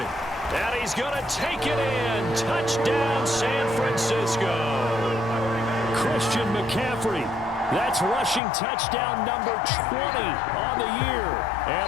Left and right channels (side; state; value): right; drops out; at 8.4 s